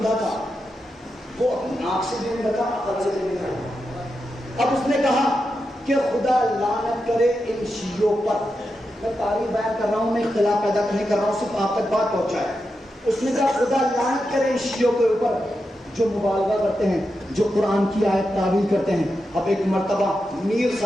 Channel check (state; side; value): normal; both; correlation 0.88